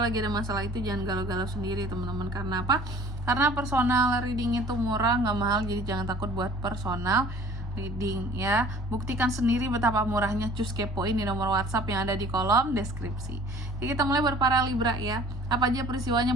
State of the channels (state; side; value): normal; both; correlation 0.50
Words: lagi ada masalah itu jangan galau-galau sendiri teman-teman. Karena apa? Karena personal reading itu murah, nggak mahal, jadi jangan takut buat personal reading ya. Buktikan sendiri betapa murahnya, cus kepoin di nomor WhatsApp yang ada di kolom deskripsi. Jadi kita mulai buat para Libra ya. Apa aja